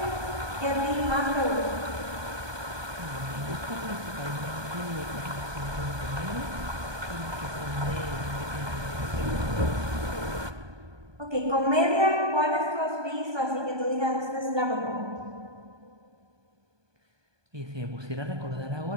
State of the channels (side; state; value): left; late; 1.2 ms